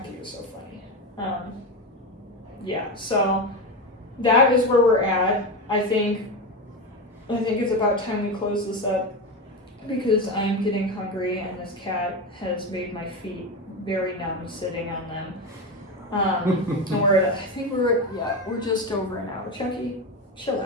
was so funny. So that is where we're at. I think it's about time we close this up. because I'm getting hungry and this cat has made my feet very numb sitting on them. And we're just over an hour. Chucky, chill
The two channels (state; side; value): normal; both; correlation 0.17